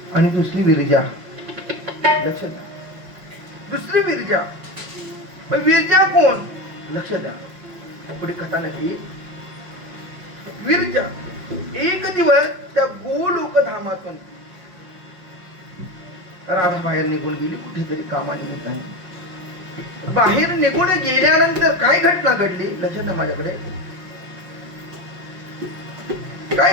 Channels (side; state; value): left; late; 5.6 ms